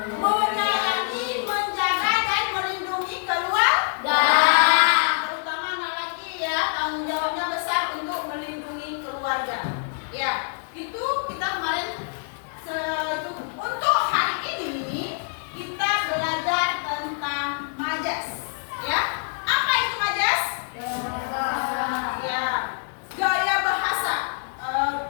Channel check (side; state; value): right; silent; 57 dB below the other